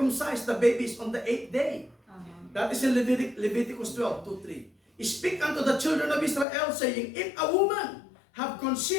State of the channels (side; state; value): right; drops out; at 6.5 s